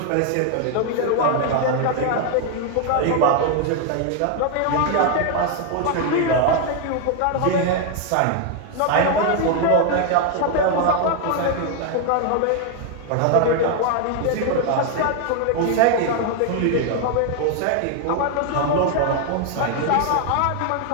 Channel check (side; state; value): both; different; correlation 0.00